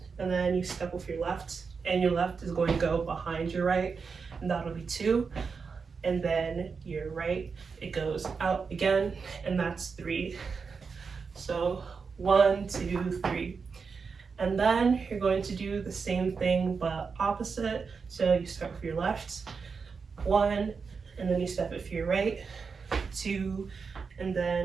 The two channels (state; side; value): quieter; left; 5.3 dB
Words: And then you step with your left, and your left is going to go behind your right, and that'll be 2. And then your right, it goes out again, and that's 3. So 1, 2, 3. And then you're going to do the same thing but opposite. So you start with your left, 1, and then you step with your right, 2, and